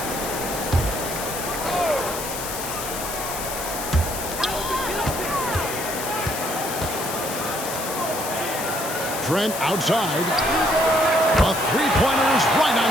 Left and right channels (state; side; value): noise; left; hiss, 6 dB below the sound